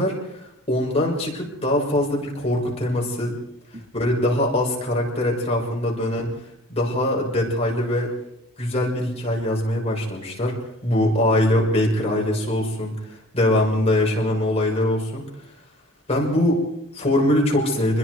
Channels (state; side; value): normal; both; correlation 0.48